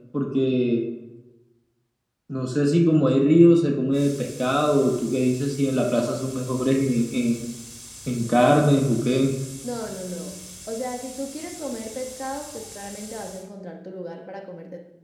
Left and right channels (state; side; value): identical; both; correlation 1.00